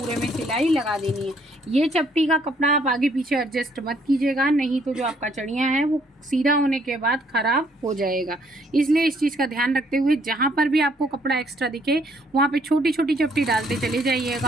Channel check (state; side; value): normal; both; correlation 0.66